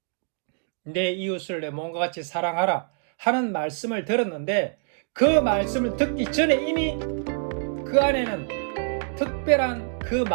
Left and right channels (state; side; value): silent; left; digital silence